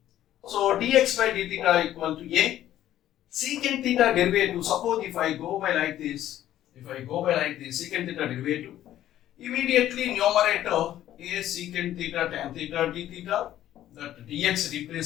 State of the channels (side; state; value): right; quieter; 12.6 dB